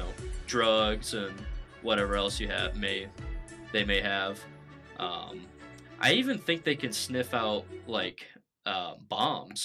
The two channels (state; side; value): identical; both; correlation 1.00